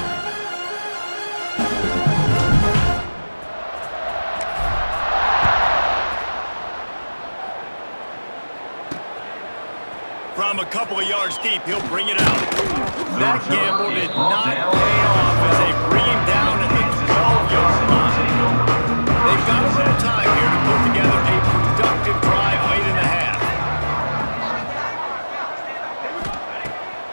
From a couple of yards deep, he'll bring it out. That gamble did not pay off as they bring him down at the 12-yard line. They've got a little time here to put together a productive drive late in the half.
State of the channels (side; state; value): both; inverted; correlation -1.00